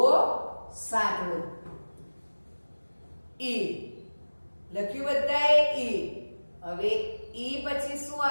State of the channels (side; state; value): both; inverted; correlation -1.00